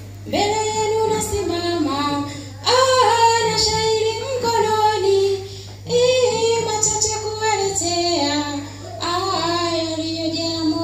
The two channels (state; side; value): identical; both; correlation 1.00